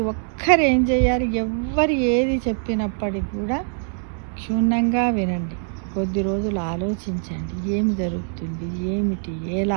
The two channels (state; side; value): silent; left; 64 dB below the other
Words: ఒక్కరు ఏం చేయాలి, ఎవ్వరు ఏది చెప్పినప్పటికి కూడా క్షుణ్ణంగా వినండి, కొద్ది రోజులు ఆలోచించండి ఏమి జరుగుతుంది ఏమిటి